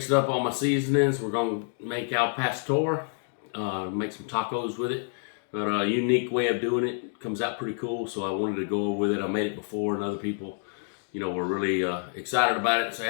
up all my seasonings. We're going to make al pastor, make some tacos with it. But a unique way of doing it, comes out pretty cool, so I wanted to go over with it. I made it before and other people, were really excited about it and say,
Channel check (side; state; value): right; silent; 59 dB below the other